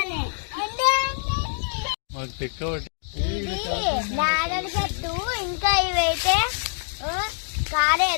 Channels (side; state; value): right; silent; digital silence